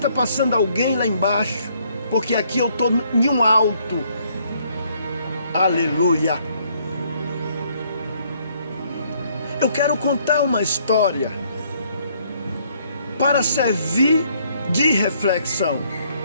passando alguém lá embaixo, porque aqui eu estou em um alto. Aleluia! Eu quero contar uma história para servir de reflexão.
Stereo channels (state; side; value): inverted; both; correlation -0.66